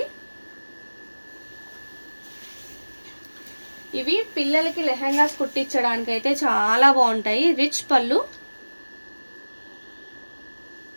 ఇవి పిల్లలకి లెహంగాస్ కుట్టించడానికి అయితే చాలా బాగుంటాయి. రిచ్ పళ్ళు,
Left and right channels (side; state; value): both; inverted; correlation -1.00